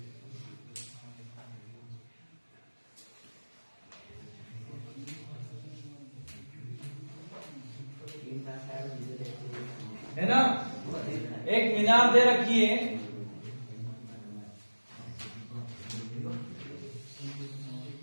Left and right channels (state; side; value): inverted; both; correlation -1.00